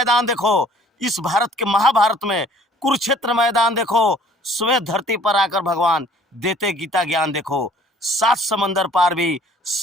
देखो, इस भारत के महाभारत में कुरुक्षेत्र मैदान देखो। श्वेत धरती पर आकर भगवान देते गीता ज्ञान देखो। 7 समंदर पार भी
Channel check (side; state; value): both; normal; correlation 0.55